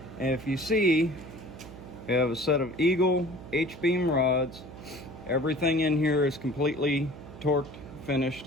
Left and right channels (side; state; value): right; noise; hum, 15 dB below the sound